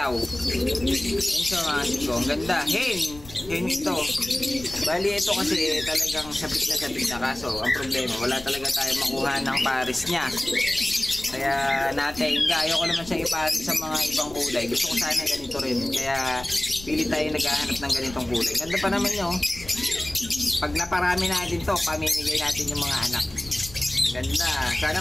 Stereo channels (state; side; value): noise; left; rumble, 18 dB below the sound